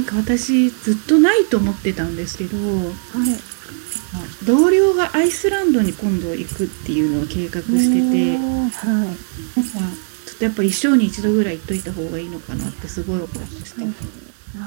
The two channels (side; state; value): left; silent; digital silence